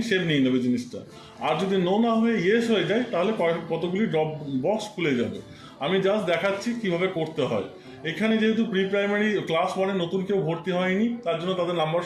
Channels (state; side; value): identical; both; correlation 1.00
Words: সেভ নিয়ে নেবে জিনিসটা। আর যদি নো না হয়ে ইয়েস হয়ে যায়, তাহলে কতগুলি ড্রপ বক্স খুলে যাবে। আমি জাস্ট দেখাচ্ছি কিভাবে করতে হয়। এখানে যেহেতু প্রি প্রাইমারি ক্লাস 1-এ নতুন কেউ ভর্তি হয়নি, তার জন্য তাদের নাম্বার